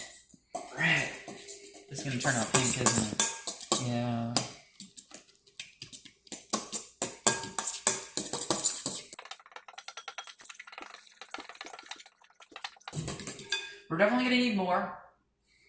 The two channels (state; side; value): identical; both; correlation 1.00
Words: Red. This is going to turn out pink, isn't it? Yeah. We're definitely going to need more,